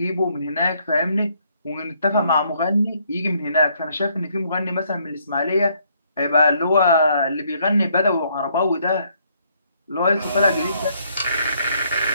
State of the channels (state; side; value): inverted; both; correlation -0.69